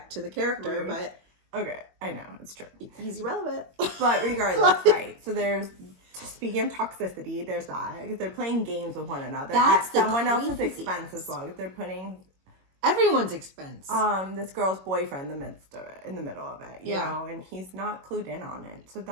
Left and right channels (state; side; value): late; left; 21 ms